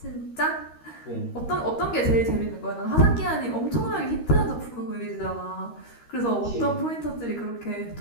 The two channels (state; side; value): late; right; 13 ms